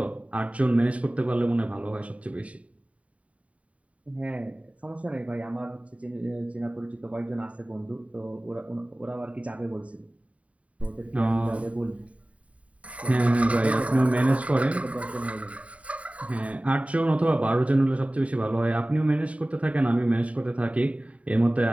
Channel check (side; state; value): left; late; 0.066 ms